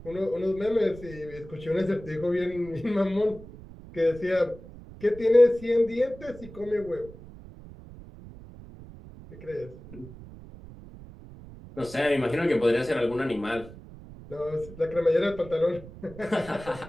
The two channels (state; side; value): noise; right; rumble, 17 dB below the sound